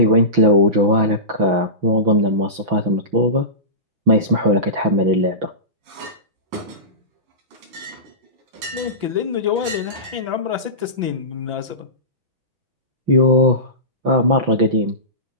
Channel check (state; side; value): late; left; 6.0 ms